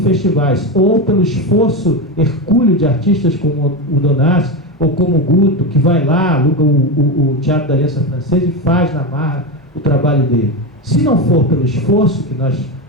ou pelo esforço hercúleo de artistas como o Donassi, ou como o Guto, que vai lá, aluga o Teatro da Aliança Francesa e faz na marra o trabalho dele. Se não for pelo esforço que nós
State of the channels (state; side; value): normal; both; correlation 0.15